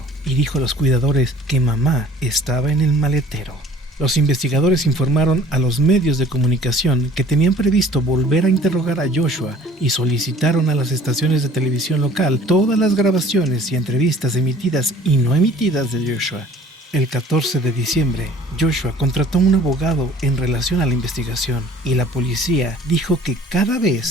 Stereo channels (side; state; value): both; normal; correlation 0.51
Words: y dijo a los cuidadores que mamá estaba en el maletero. Los investigadores informaron a los medios de comunicación que tenían previsto volver a interrogar a Joshua y solicitaron a las estaciones de televisión local todas las grabaciones y entrevistas emitidas y no emitidas de Joshua. El 14 de diciembre, Joshua contrató a un abogado en relación a la investigación y la policía dijo que cada vez